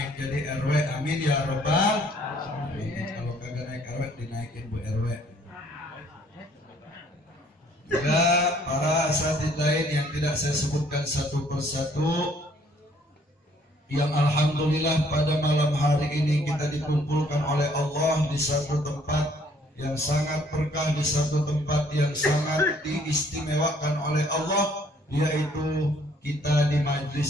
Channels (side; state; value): both; normal; correlation 0.62